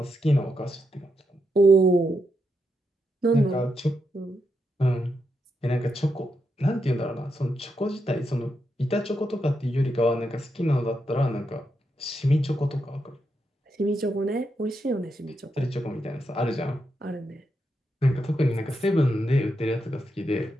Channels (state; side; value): normal; both; correlation 0.83